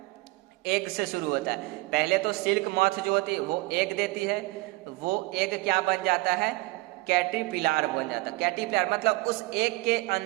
एग से शुरू होता है। पहले तो सिल्क मॉथ जो होती है वो एग देती है, वो एग क्या बन जाता है, कैटरपिलर बन जाता है। कैटरपिलर मतलब उस एग के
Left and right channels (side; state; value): left; quieter; 22.4 dB